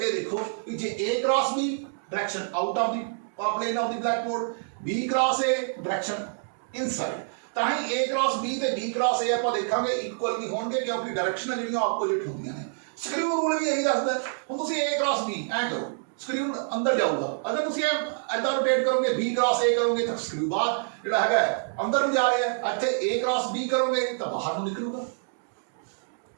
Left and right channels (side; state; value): left; silent; digital silence